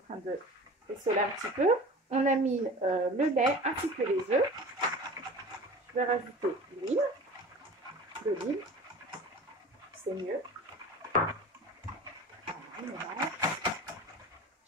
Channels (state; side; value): normal; both; correlation 0.38